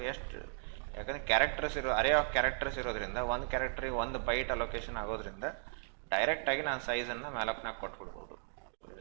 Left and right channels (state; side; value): silent; left; digital silence